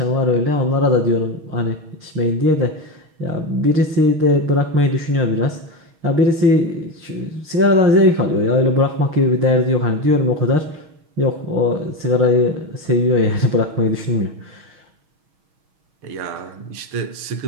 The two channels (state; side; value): late; left; 6.4 ms